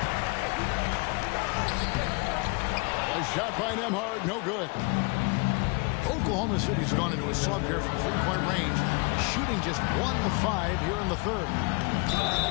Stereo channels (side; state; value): right; quieter; 30.5 dB